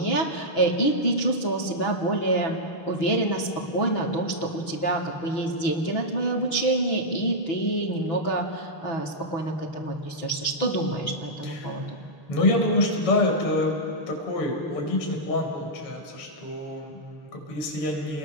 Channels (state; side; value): late; right; 6.1 ms